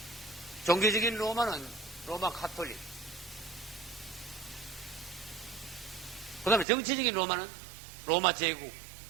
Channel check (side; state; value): left; drops out; at 6.7 s